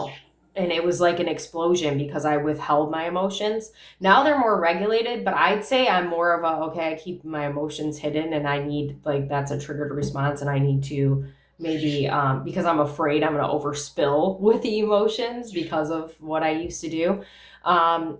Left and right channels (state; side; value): identical; both; correlation 1.00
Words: and it was like an explosion because I withheld my emotions. Now they're more regulated, but I'd say I'm more of a, okay, I keep my emotions hidden, and I need, like, that's a triggered response, and I need to maybe because I'm afraid I'm going to overspill with the emotions because of what I used to do.